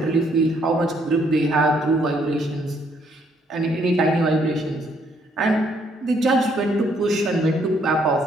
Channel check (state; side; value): normal; both; correlation 0.69